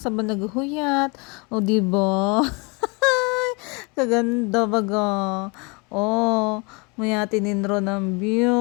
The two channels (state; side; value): quieter; right; 29.8 dB